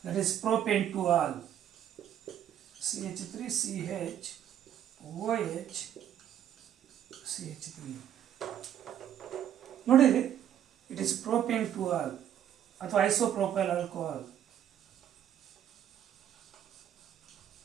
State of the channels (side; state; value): left; quieter; 10.4 dB